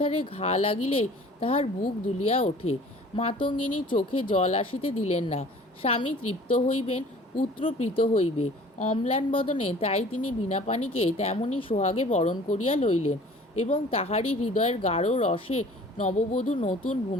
ঘা লাগিলেই তাহার বুক দুলিয়া ওঠে। মাতঙ্গিনী চোখে জল আসিতে দিলেন না। স্বামী তৃপ্ত হইবেন, পুত্র প্রীত হইবে, অম্লান বদনে তাই তিনি বীণাপাণিকে তেমনি সোহাগে বরণ করিয়া লইলেন এবং তাহারই হৃদয়ের গাঢ় রসে নববধূ নতুন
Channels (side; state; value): both; normal; correlation 0.48